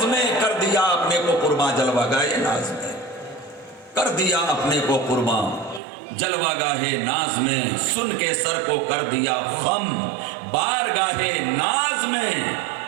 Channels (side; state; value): left; drops out; at 5.8 s